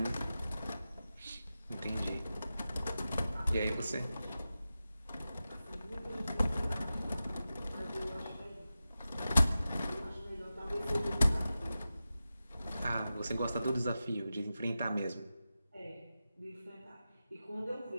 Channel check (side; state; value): both; inverted; correlation -0.93